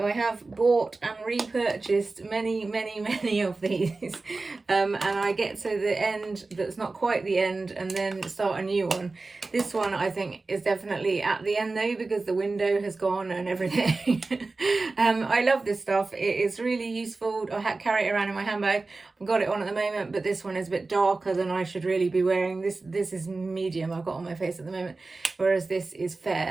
have bought and repurchased many of these, and I get to the end that's not quite the end and then start a new one. This one I think is definitely at the end though because the window has gone and everything. I love this stuff. It is really useful. I carry it around in my handbag. I've got it on at the moment, but this one is a bit darker than I should really be wearing. This is medium I've got on my face at the moment, whereas this is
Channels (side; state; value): left; quieter; 3.6 dB